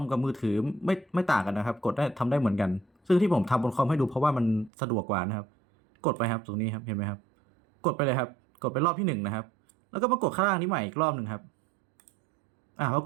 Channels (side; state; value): left; drops out; at 4.7 s